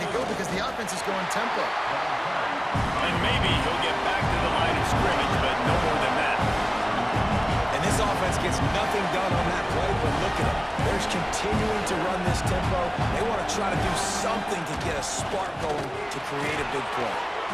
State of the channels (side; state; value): both; identical; correlation 1.00